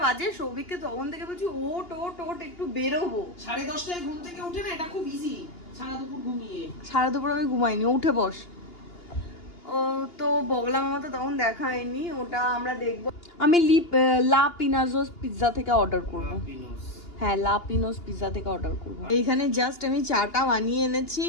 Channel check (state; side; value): late; right; 2.9 ms